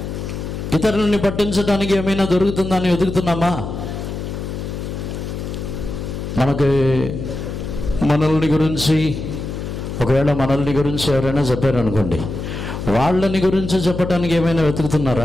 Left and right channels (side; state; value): left; noise; hum, 6 dB below the sound